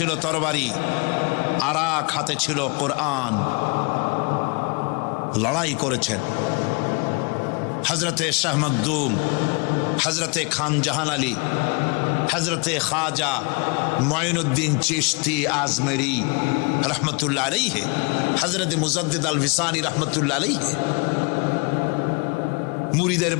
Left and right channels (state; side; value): quieter; right; 31.3 dB